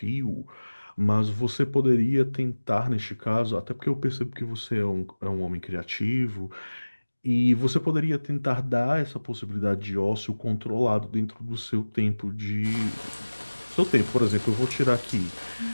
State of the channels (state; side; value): inverted; both; correlation -1.00